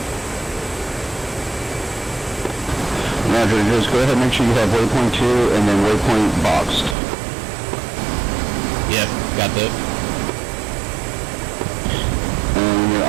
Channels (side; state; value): left; drops out; at 7.0 s